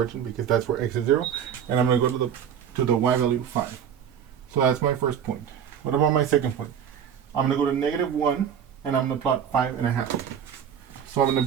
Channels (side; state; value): left; quieter; 8.5 dB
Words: because that's where x is 0. And I'm going to go to the y value 5. So that's my first point. What about my second point? I'm going to go to negative 1, and I'm going to plot 5.5. So I'm going